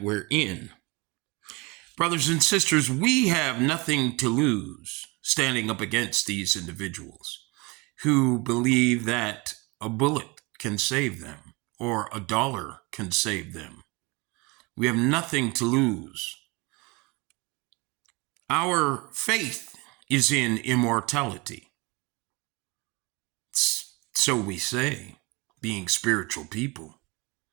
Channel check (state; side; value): quieter; left; 26.6 dB